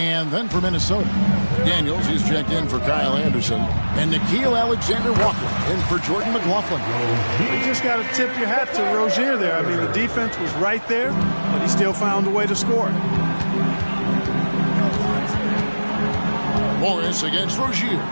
then for Minnesota, Daniels, he's checked in for Kyle Anderson, and Nickeil Alexander-Walker in for Jordan McLaughlin. You just got to tip your hat to Rozier there. I mean, the defense was right there, but he still found a way to score. Morris against Rozier.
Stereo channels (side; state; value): both; inverted; correlation -1.00